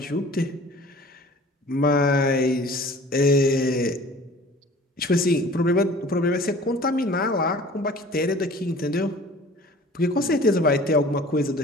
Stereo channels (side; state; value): both; normal; correlation 0.46